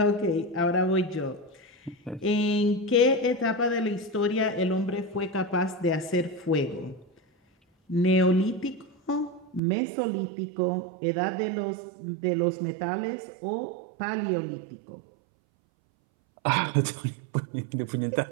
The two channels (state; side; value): drops out; left; at 9.6 s